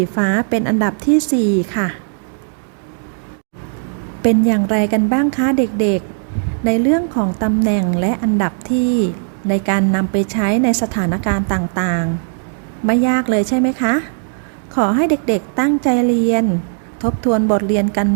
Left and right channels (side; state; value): left; silent; digital silence